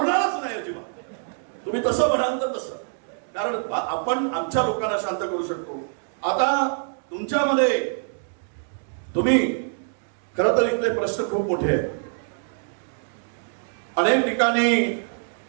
नाही अजिबात. तुम्ही तसं म्हणाल तर तसं, कारण आपण आमच्या लोकांना शांत करू शकतो. आता तुमच्यामध्ये तुम्ही खरं तर इथले प्रश्न खूप मोठे आहेत. अनेक ठिकाणी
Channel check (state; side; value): silent; left; digital silence